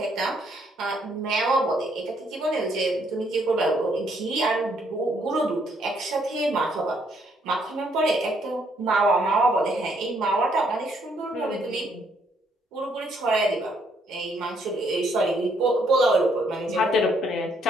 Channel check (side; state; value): both; normal; correlation 0.70